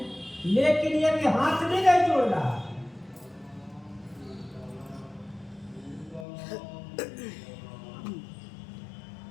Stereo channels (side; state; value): right; drops out; at 6.2 s